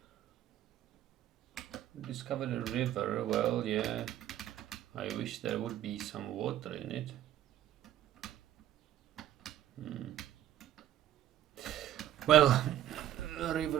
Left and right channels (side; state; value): left; quieter; 12.4 dB